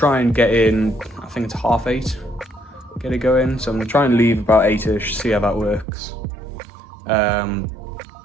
and get in, I think it's 8:30, get to go in. So I'm gonna try and leave about 8ish, see how that works.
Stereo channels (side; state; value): left; drops out; at 5.9 s